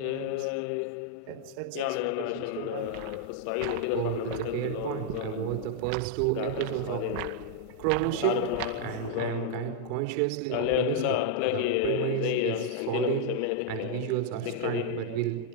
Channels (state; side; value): different; both; correlation 0.00